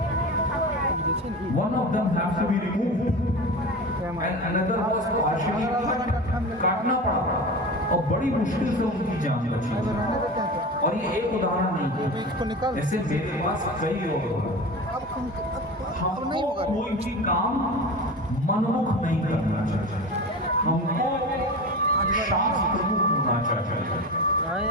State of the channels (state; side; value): normal; both; correlation 0.30